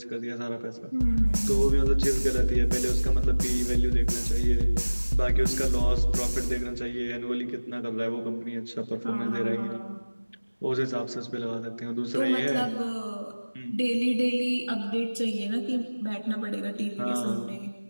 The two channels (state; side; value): inverted; both; correlation -1.00